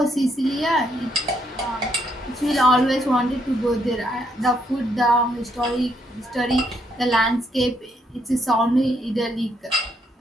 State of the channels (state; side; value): normal; both; correlation 0.74